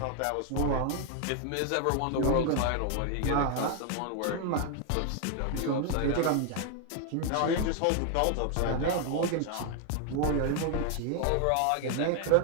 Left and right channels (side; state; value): both; different; correlation 0.00